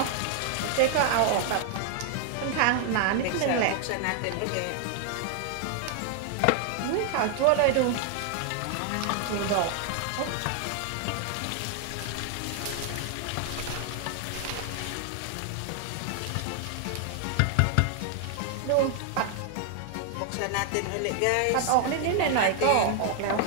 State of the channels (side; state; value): both; different; correlation 0.00